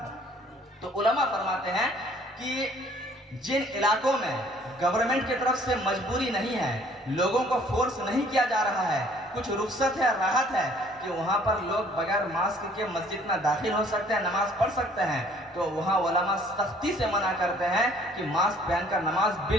تو علماء فرماتے ہیں کہ جن علاقوں میں گورنمنٹ کی طرف سے مجبوری نہیں ہے، لوگوں کو فورس نہیں کیا جا رہا ہے، کچھ رخصت ہے، راحت ہے کہ وہاں پر لوگ بغیر ماسک کے مسجد میں داخل ہو سکتے ہیں، نماز پڑھ سکتے ہیں، تو وہاں علماء سختی سے منع کرتے ہیں کہ ماسک پہن کر نماز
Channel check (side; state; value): both; normal; correlation 0.58